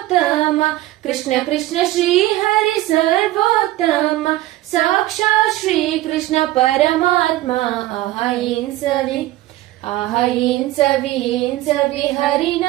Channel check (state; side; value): quieter; left; 16.4 dB